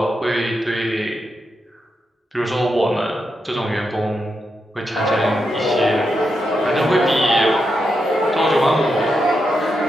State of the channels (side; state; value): both; normal; correlation 0.85